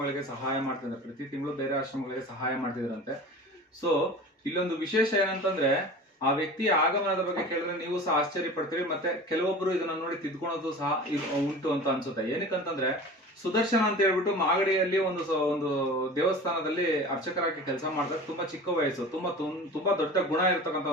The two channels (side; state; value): both; normal; correlation 0.37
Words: ಸಹಾಯ ಮಾಡ್ತಿದ್ದಾರೆ, ಪ್ರತಿ ತಿಂಗಳು ಬೇರೆ ಆಶ್ರಮಗಳಿಗೆ ಸಹಾಯ ಮಾಡ್ತಿದ್ರಂತೆ. ಸೊ ಇಲ್ಲೊಂದು ವಿಶೇಷ ಏನಂತಂದ್ರೆ, ಆ ವ್ಯಕ್ತಿಯ ಆಗಮನದ ಬಗ್ಗೆ ಕೇಳಿದ್ರೆ ನೀವು ಸಹ ಆಶ್ಚರ್ಯ ಪಡ್ತೀರಿ, ಮತ್ತೆ ಕೆಲವೊಬ್ರು ಇದನ್ನ ನೋಡಿ ತಿದ್ಕೊಳೋದು ಸಹ ಉಂಟು ಅಂತ ಅನ್ಸುತ್ತೆ. ಏನಕ್ಕಂತಂದ್ರೆ, ಸುದರ್ಶನ ಅಂತ ಹೇಳ್ಬಿಟ್ಟು ಮಾಗಡಿಯಲ್ಲಿ ಒಂದು ದೇವಸ್ಥಾನದಲ್ಲಿ ಅರ್ಚಕರಾಗಿ ಕೆಲಸ ಮಾಡ್ತಾರೆ. ತುಂಬಾ ಚಿಕ್ಕ ವಯಸ್ಸು, ತುಂಬಾ ದೊಡ್ಡ ಗುಣ ಇರ್ತಕ್ಕಂಥ